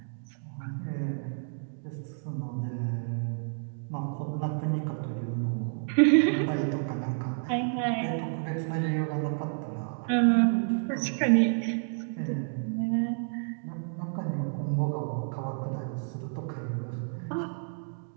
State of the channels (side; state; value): left; silent; digital silence